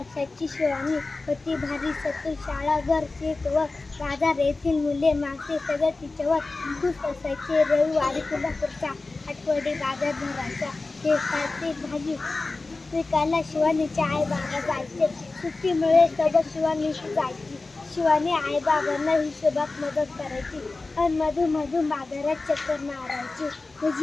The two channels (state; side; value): quieter; right; 3.5 dB